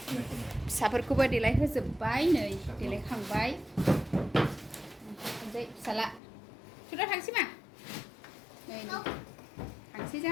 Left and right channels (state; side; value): drops out; right; at 6.2 s